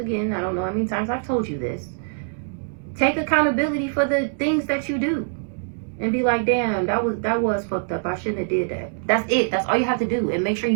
I don't know how many times I've told you this. Take accountability for the things that you do. And be like, damn, that was fucked up. I shouldn't have did that. That's it. That's all you have to do. And make sure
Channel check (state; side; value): silent; left; digital silence